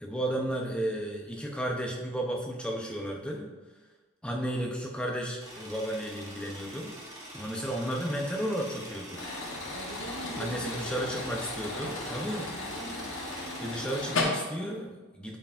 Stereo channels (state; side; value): normal; both; correlation 0.54